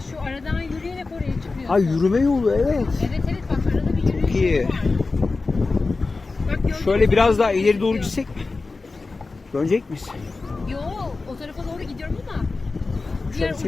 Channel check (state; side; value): quieter; right; 3.8 dB